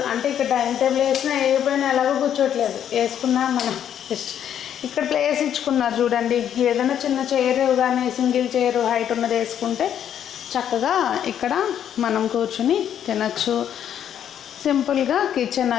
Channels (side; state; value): right; quieter; 9.6 dB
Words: అంటే ఇక్కడ డైనింగ్ టేబుల్ వేసినా వేయకపోయినా ఎలాగో కూర్చోట్లేదు వేసుకున్నా మనం ఇక్కడ ప్లేస్ ఇచ్చుకున్నారు చూడండి ఏదైనా చిన్న చైర్ కానీ సింగిల్ చైర్ హైట్ ఉన్నది వేసుకుంటే చక్కగా ఇక్కడ మనం కూర్చుని తినచ్చు సింపుల్గా కిచెన్